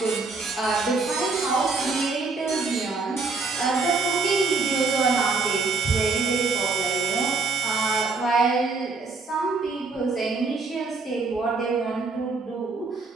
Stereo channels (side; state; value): left; quieter; 4.2 dB